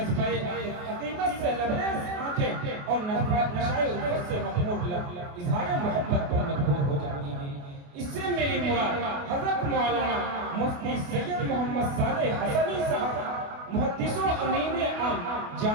عقیدت سے لبریز آنکھیں اور نشائے الفت سے مخمور لب اظہار محبت پر مجبور ہو جاتی ہیں۔ اس سے میری مراد حضرت مولانا مفتی سید محمد صالح حسنی صاحب محدث و امین عام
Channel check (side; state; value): left; late; 28 ms